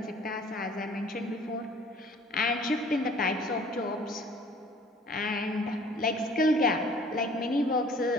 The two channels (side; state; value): both; normal; correlation 0.52